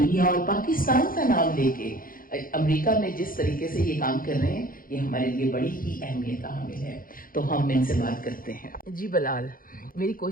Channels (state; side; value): late; right; 0.41 ms